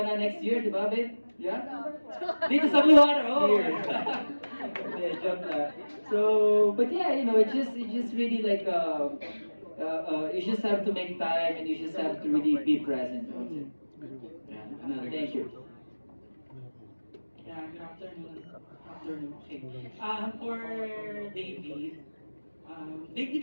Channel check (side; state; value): both; inverted; correlation -1.00